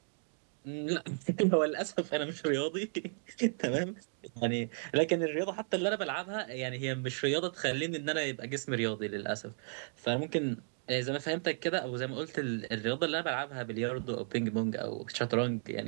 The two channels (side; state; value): left; silent; 55 dB below the other